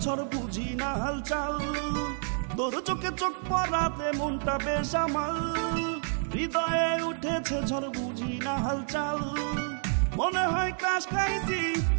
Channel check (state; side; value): silent; left; 58 dB below the other